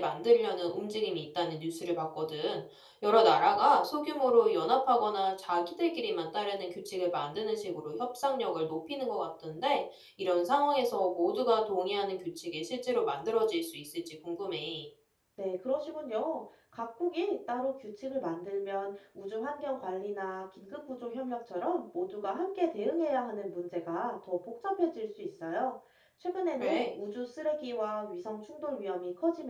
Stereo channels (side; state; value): both; identical; correlation 1.00